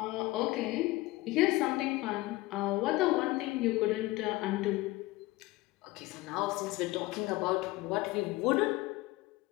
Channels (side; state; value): right; quieter; 19.6 dB